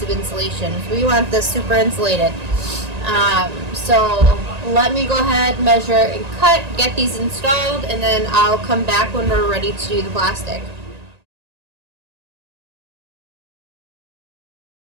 of insulation. We want this super insulated. So let me go ahead, measure and cut, get these installed, and then I'll come back when we're ready to do the plastic.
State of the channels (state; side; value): late; left; 1.9 ms